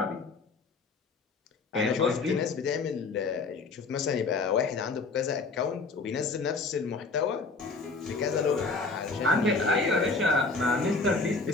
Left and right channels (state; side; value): quieter; right; 3.9 dB